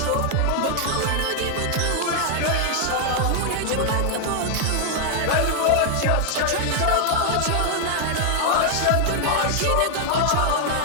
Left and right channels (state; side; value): different; both; correlation 0.00